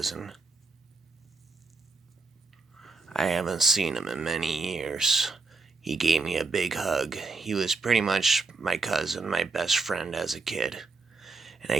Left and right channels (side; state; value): left; quieter; 3.9 dB